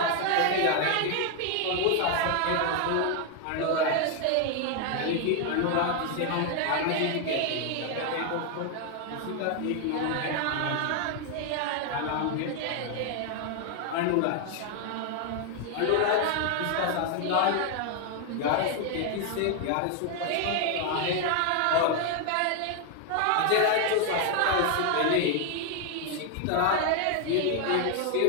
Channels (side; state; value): both; different; correlation 0.00